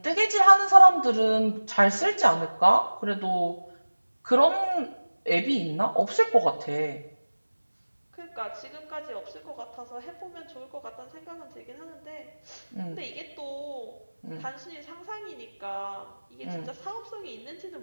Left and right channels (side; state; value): both; inverted; correlation -1.00